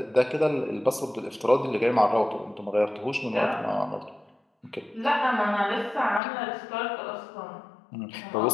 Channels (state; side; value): drops out; right; at 6.2 s